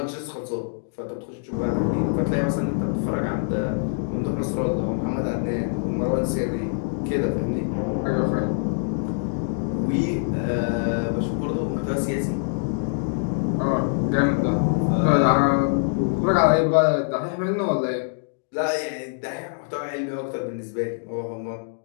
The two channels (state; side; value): silent; right; digital silence